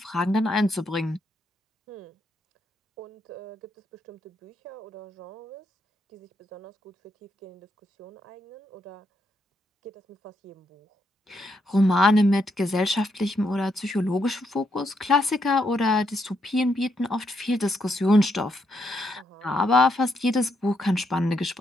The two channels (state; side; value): normal; both; correlation 0.78